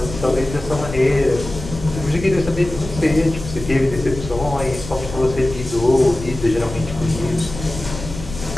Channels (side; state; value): left; noise; rumble, 10 dB below the sound